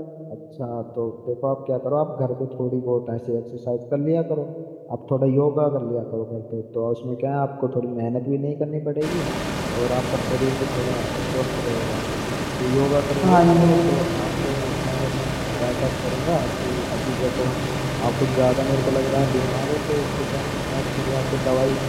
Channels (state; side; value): identical; both; correlation 1.00